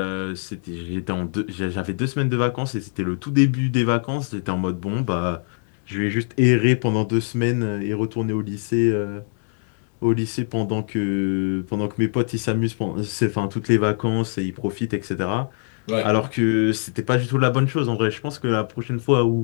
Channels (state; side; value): silent; right; 64 dB below the other